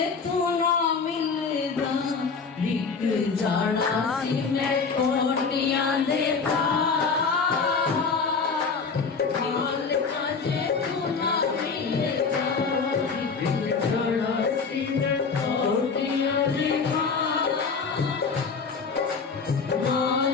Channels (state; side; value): quieter; right; 5.1 dB